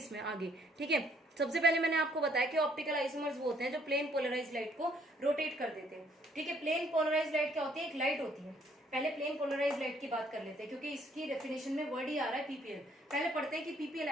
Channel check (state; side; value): normal; both; correlation 0.65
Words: आगे, ठीक है। सबसे पहले मैंने आपको बताया कि ऑप्टिकल आइसोमर्स वो होते हैं जो प्लेन पोलराइज लाइट को रोटेट कर देते हैं, ठीक है। प्लेन पोलराइज लाइट क्या होती है, एक लाइट होती है। पहले प्लेन पोलराइज लाइट की बात कर लेते हैं, क्योंकि इसकी डेफिनेशन में वर्ड ही आ रहा है पीपीएल। पहले पढ़ते हैं कि पीपीएल